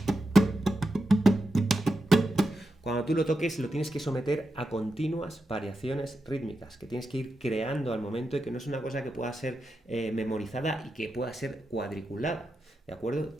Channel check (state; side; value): normal; both; correlation 0.88